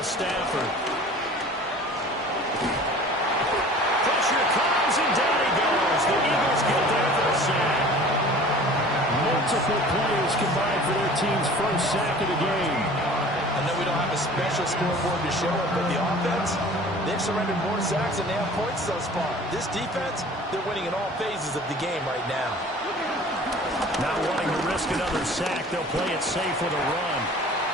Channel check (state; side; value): normal; both; correlation 0.45